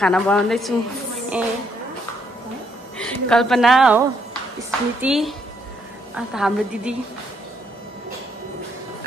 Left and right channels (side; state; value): both; normal; correlation 0.72